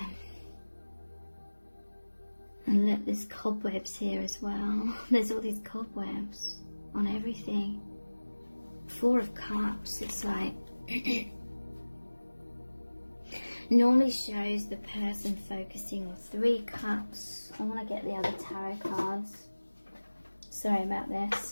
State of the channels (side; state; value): both; inverted; correlation -1.00